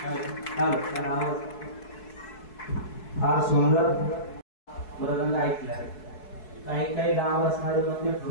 फार सुंदर मृदंग ऐकला. काही काही गाव असणारे म्हणजे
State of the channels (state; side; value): late; right; 4.7 ms